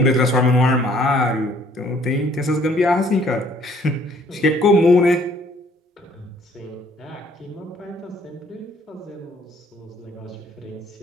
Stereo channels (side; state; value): both; normal; correlation 0.60